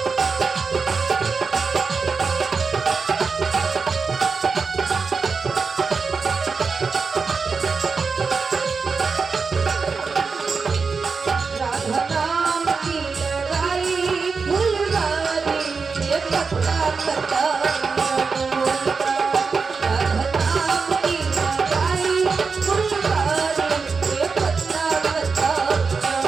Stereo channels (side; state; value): left; quieter; 4.9 dB